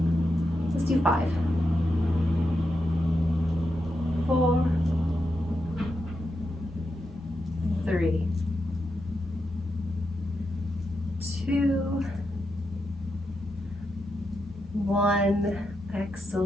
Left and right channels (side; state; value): both; normal; correlation 0.86